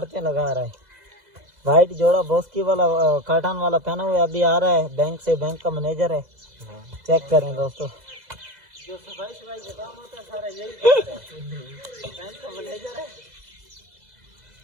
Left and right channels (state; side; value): late; left; 2.0 ms